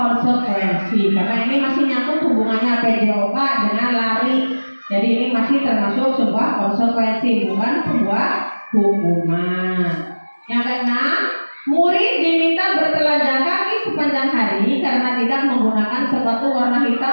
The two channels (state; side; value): inverted; both; correlation -1.00